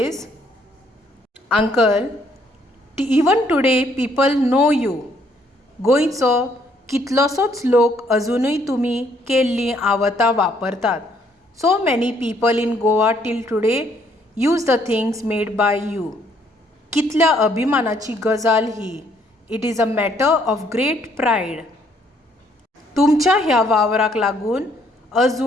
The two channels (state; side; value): normal; both; correlation 0.67